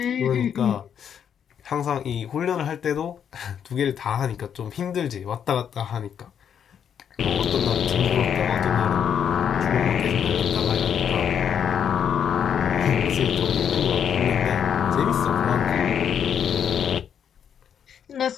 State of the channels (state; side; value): quieter; right; 8.3 dB